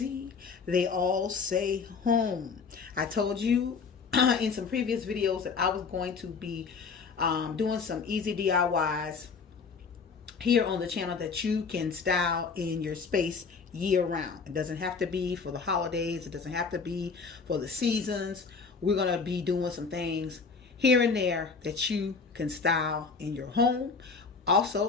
they all say home. I told you in some previous videos that I was going to be doing some easy DIYs here on the channel that you can style in your space year round. It doesn't have to be for the holidays, it doesn't have to be for the seasons. We're going to be doing some things here and there that you can style in your home.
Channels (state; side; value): quieter; right; 5.1 dB